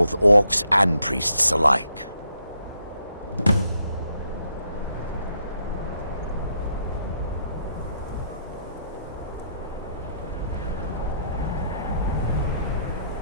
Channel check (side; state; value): both; inverted; correlation -0.75